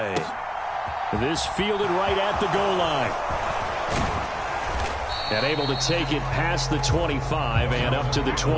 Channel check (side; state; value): both; identical; correlation 1.00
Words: This fielded right at the goal line. And able to take it past the 25 and up to the